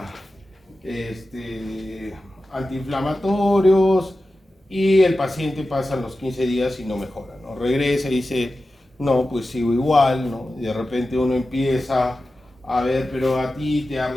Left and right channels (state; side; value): normal; both; correlation 0.93